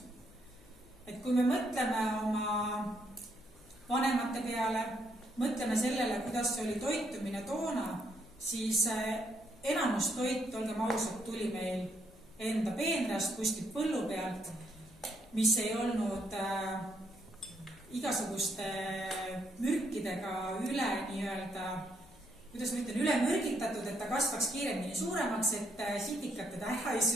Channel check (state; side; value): noise; left; hum, 26 dB below the sound